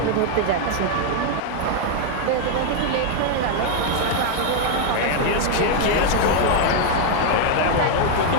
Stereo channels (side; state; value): both; different; correlation 0.00